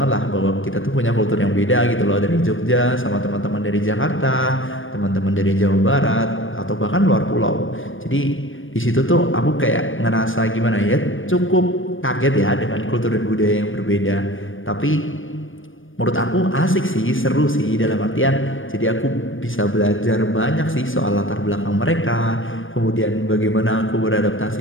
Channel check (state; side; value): late; right; 0.58 ms